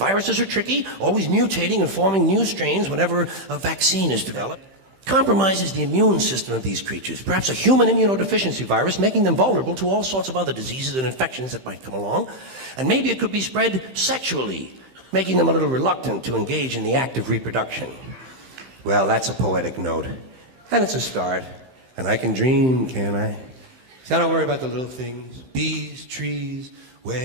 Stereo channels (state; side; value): late; left; 15 ms